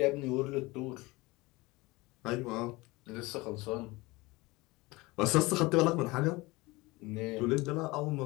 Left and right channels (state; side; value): quieter; right; 22.5 dB